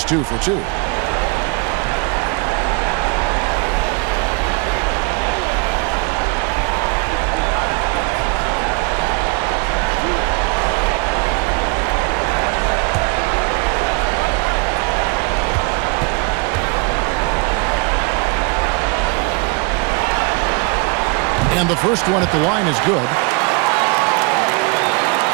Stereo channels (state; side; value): quieter; left; 30.8 dB